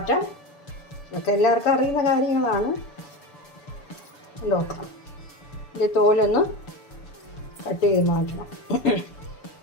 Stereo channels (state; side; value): late; right; 6.9 ms